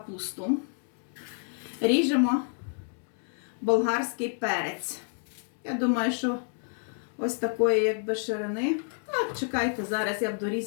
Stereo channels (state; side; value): silent; right; 58 dB below the other